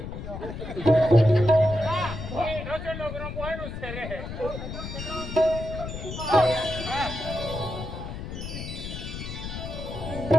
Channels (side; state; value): left; noise; rumble, 7 dB below the sound